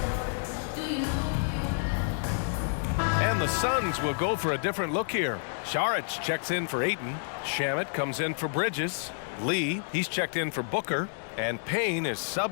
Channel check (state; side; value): silent; right; digital silence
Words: And the Suns will go for a different look here. Saric checks in for Ayton. Shamet comes in for Bridges. Lee, he's checked in for Booker. And Payne is